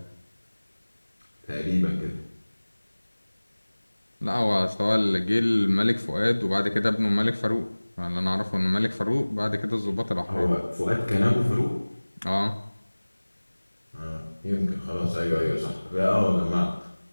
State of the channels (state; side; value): inverted; both; correlation -1.00